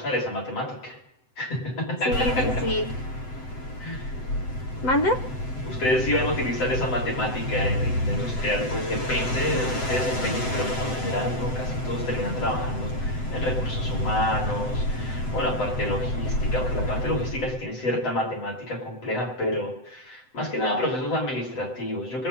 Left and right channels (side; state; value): right; late; 7.9 ms